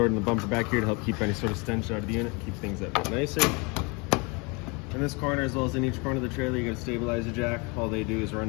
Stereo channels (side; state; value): right; quieter; 29.7 dB